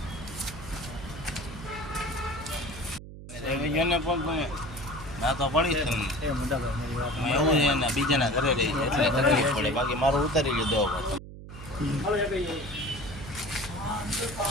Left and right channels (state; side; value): noise; right; hum, 14 dB below the sound